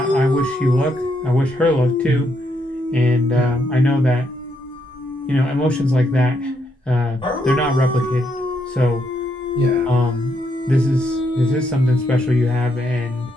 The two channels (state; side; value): normal; both; correlation 0.77